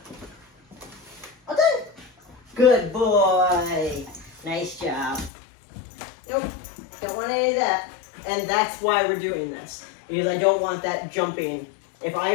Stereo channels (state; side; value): drops out; right; at 5.3 s